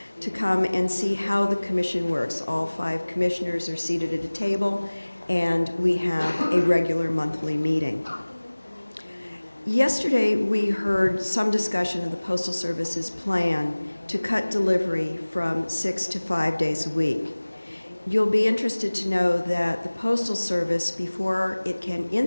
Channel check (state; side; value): inverted; both; correlation -1.00